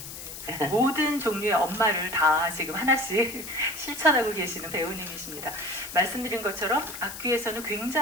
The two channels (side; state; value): left; noise; hiss, 11 dB below the sound